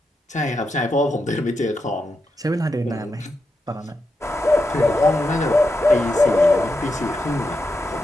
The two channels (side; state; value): both; normal; correlation 0.86